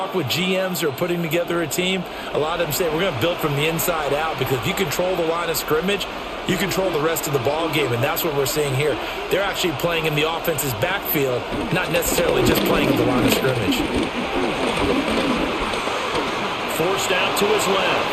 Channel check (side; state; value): both; identical; correlation 1.00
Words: with GMs who are putting together a team, a lot of them say we're going to build from the inside out, because if you control the line of scrimmage, you control the rest of the ball game, and that's what we're seeing here. They're actually playing in the offense's backfield, not necessarily just playing in the line of scrimmage. Forced out to his